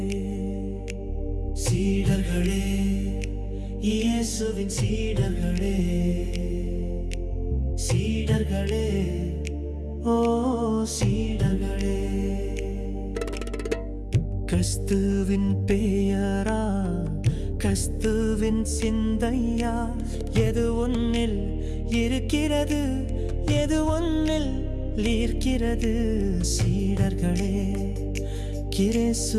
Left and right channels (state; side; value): identical; both; correlation 1.00